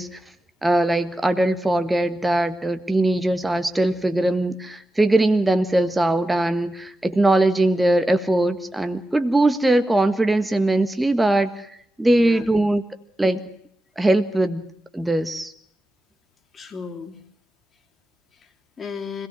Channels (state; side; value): normal; both; correlation 0.92